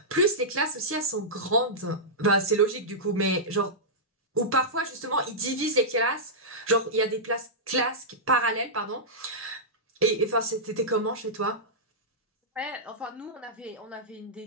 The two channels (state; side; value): normal; both; correlation -0.12